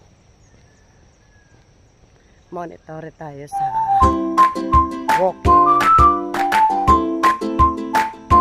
Monitor tayo sa walking.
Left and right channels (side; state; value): both; identical; correlation 1.00